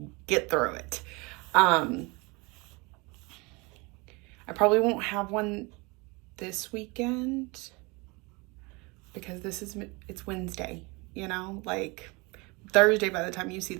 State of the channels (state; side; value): quieter; left; 26.8 dB